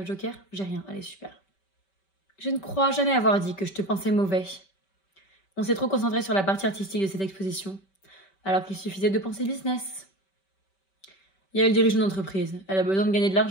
joker? J'ai rien, allez, super. Je ne crois jamais avoir dit que je te pensais mauvais. On s'est trop concentré sur la partie artistique de cette exposition, alors qu'il suffisait de penser business. Yael dirige une entreprise, elle a besoin de gagner de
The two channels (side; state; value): right; late; 5.2 ms